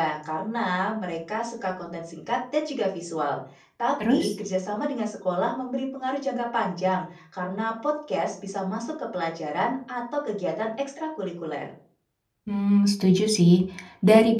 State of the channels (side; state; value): both; identical; correlation 1.00